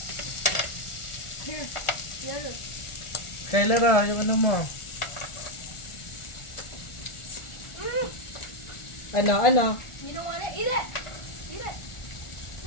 Here. The other. Kailan yung ano mo? Ano? You don't want it? Eat it. Eat it.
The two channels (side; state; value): right; late; 1.4 ms